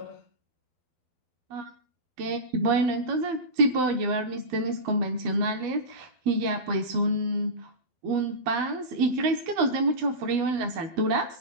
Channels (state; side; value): late; left; 12 ms